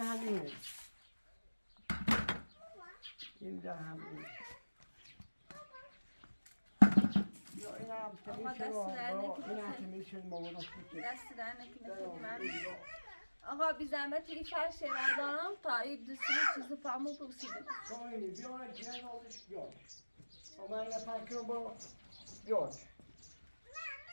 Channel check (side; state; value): both; inverted; correlation -1.00